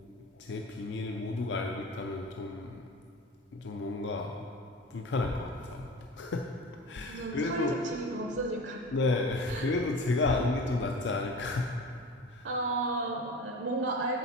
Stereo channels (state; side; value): normal; both; correlation 0.34